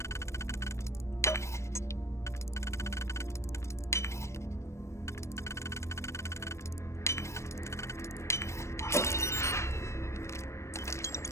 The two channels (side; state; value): right; late; 0.13 ms